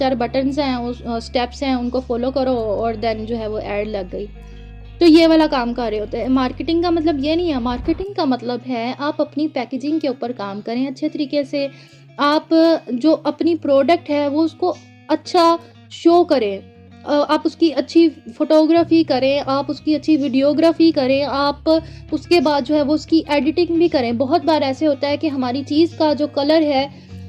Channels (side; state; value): both; identical; correlation 1.00